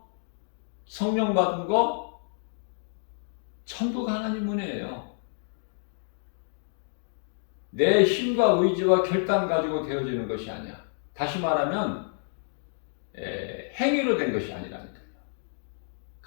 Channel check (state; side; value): silent; right; digital silence